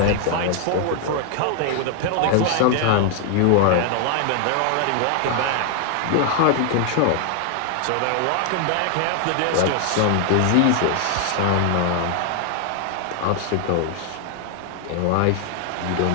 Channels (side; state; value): both; different; correlation 0.00